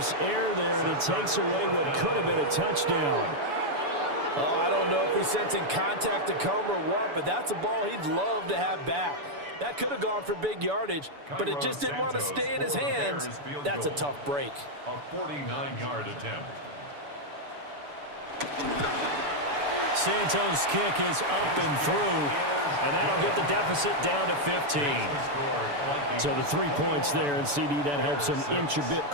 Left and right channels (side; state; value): left; late; 6.9 ms